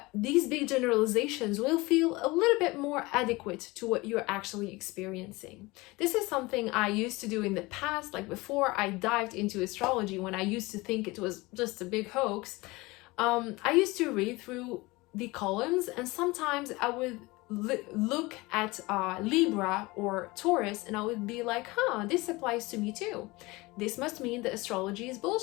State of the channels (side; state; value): right; quieter; 22.5 dB